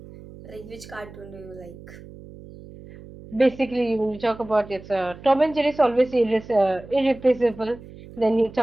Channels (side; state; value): right; noise; hum, 17 dB below the sound